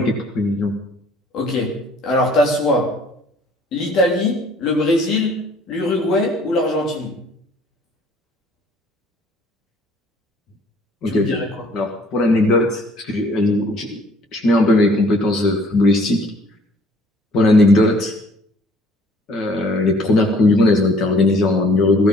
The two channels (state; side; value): normal; both; correlation 0.57